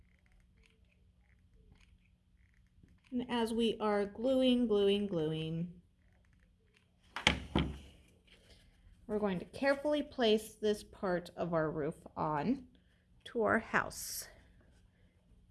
And as we are gluing, we're going to carefully place this part of our roof on to our house.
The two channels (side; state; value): both; identical; correlation 1.00